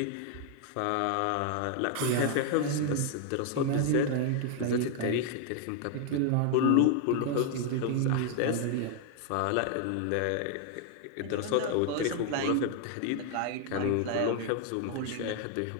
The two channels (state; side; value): different; both; correlation 0.00